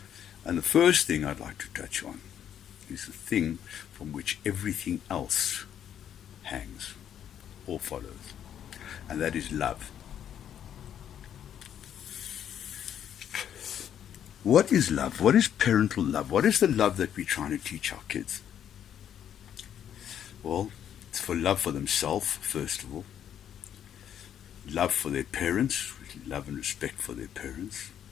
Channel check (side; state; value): right; quieter; 9.6 dB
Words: And the first thing I'd like to touch on is the thing from which everything else hangs or follows, and that is love. What is love? What is parental love? What is the love that we're trying to teach our kids? Well, it's for love for themselves, first of all, love for their parents, love and respect for their parents,